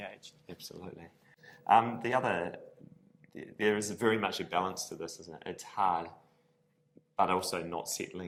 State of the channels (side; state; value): both; identical; correlation 1.00